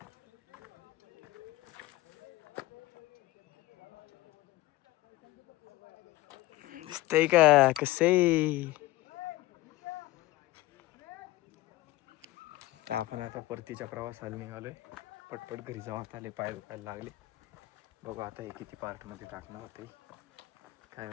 दिसतंय का कसं. आपण आता परतीच्या प्रवासाला निघालोय. पटपट घरी जाऊ. आता आले पाय दुखायला लागले. बघू आता हे किती पार्ट मध्ये टाकणं होतंय काय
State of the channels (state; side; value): quieter; right; 18.1 dB